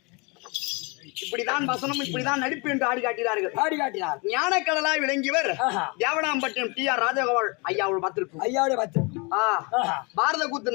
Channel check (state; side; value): quieter; right; 29.8 dB